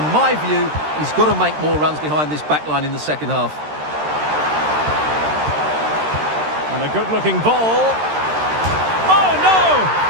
my view, he's got to make more runs behind this back line in the second half. And a good-looking ball. Oh, no!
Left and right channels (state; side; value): late; left; 13 ms